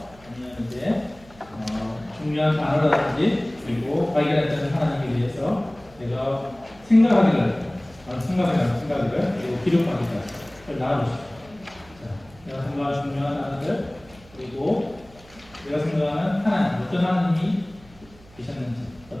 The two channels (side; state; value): right; noise; hum, 25 dB below the sound